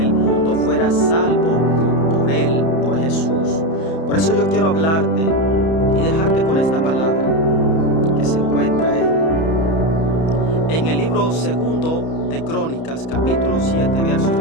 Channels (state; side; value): late; right; 31 ms